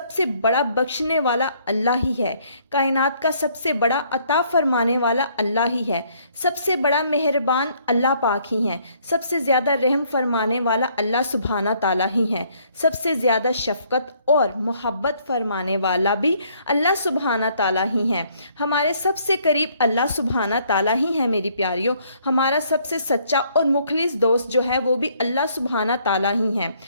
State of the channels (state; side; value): inverted; both; correlation -0.65